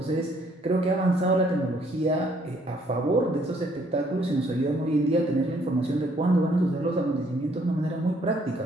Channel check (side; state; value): both; normal; correlation 0.65